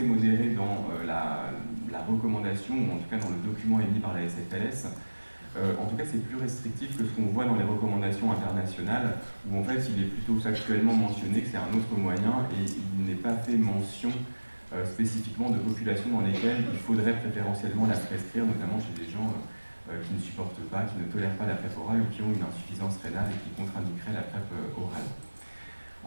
modéré dans la recommandation ou en tout cas dans le document émis par la SFLS. En tout cas, c'est plus restrictif que ce qu'on voit dans les recommandations internationales, où en fait, il est plutôt factuellement mentionné que c'est un autre moyen et il n'est pas fait mention spécifiquement de populations dans lesquelles il faudrait préférentiellement la prescrire, notamment chez des gens qui ne supportent pas, qui ne tolèrent pas la PrEP orale ou qui ont une insuffisance rénale et qui contre-indiqueraient la PrEP orale.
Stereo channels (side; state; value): both; inverted; correlation -1.00